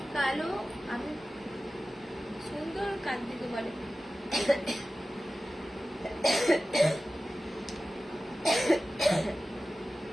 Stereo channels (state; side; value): normal; both; correlation 0.95